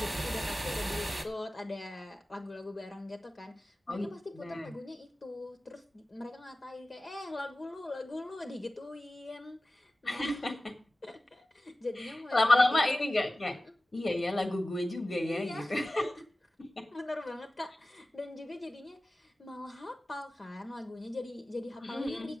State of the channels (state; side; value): normal; both; correlation 0.96